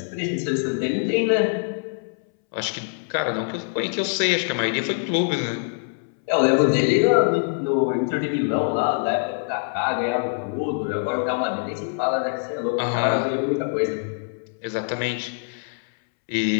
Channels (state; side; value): silent; right; 63 dB below the other